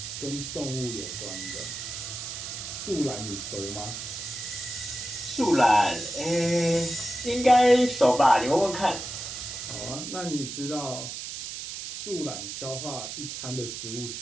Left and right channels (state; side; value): noise; right; hiss, 7 dB below the sound